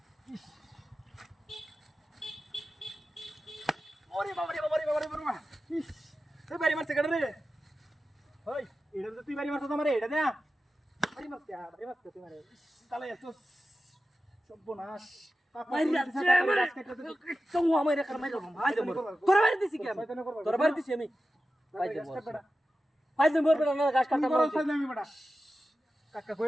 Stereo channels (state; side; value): normal; both; correlation 0.93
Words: ওরে বাবা রে বাবা রে বাবা রে বাবা ইস তুই বাড়ি মারছে কাটে রে ওই এটা তো তুই বাড়ি মারছ তোমারে এটা দে বাড়ি মারছে তুই মারে তাহলে এত সর্বনাশ